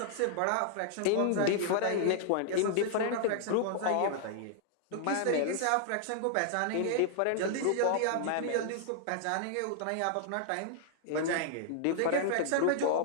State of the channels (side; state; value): both; different; correlation -0.01